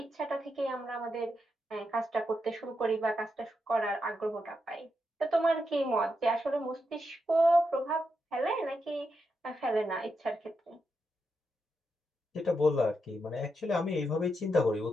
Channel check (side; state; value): both; normal; correlation 0.84